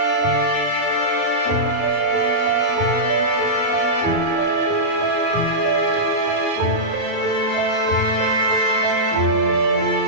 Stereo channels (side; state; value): right; late; 37 ms